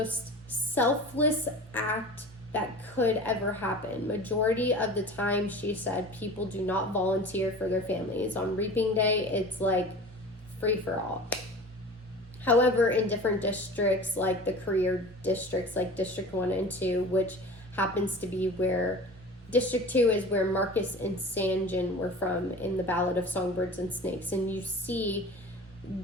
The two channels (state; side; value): normal; both; correlation 0.38